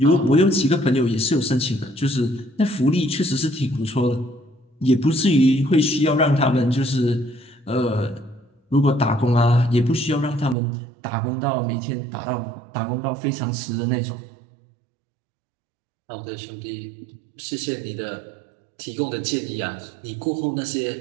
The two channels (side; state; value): left; drops out; at 10.6 s